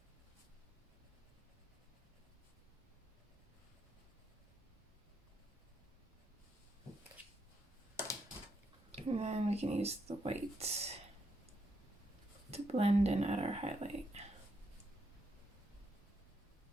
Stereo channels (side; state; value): both; normal; correlation 0.79